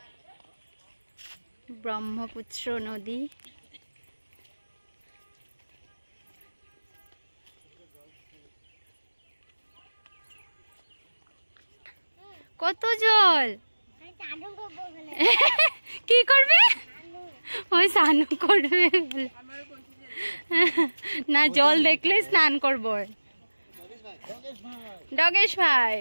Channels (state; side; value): inverted; both; correlation -1.00